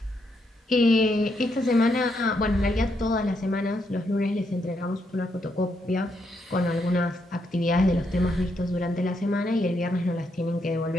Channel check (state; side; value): normal; both; correlation 0.78